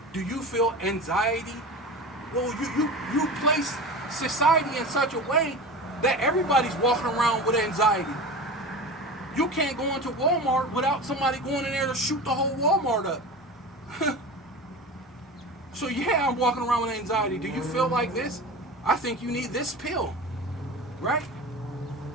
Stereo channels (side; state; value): both; normal; correlation 0.31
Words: Do you feel anxiety? Well, you place society in such a way that everybody's walking around with anxiety. You can't go into Walmart without somebody going in there to shoot the whole Walmart up. So yeah, I'm walking around with anxiety. Do you feel like this? I think you need this pill, right?